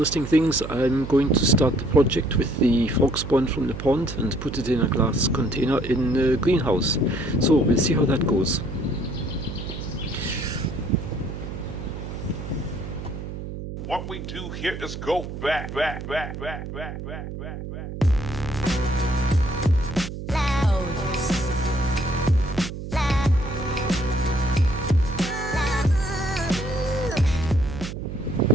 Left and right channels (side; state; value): right; noise; hum, 8 dB below the sound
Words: things. I'm going to start the project with the frog spawn from the pond and put it in a glass container in the greenhouse. So we'll see how that goes. What we do here is go back.